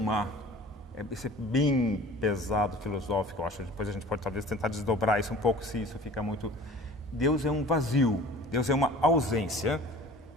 isso é bem pesado, filosófico, eu acho. Depois a gente pode talvez tentar desdobrar isso um pouco, se isso fica muito... Deus é um vazio, Deus é uma ausência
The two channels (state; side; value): normal; both; correlation 0.45